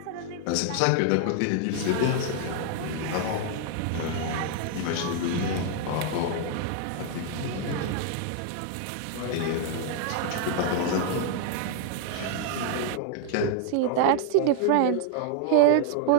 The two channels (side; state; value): both; different; correlation 0.00